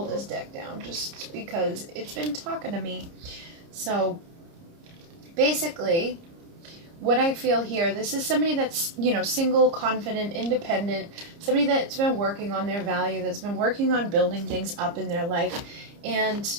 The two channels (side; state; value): left; late; 30 ms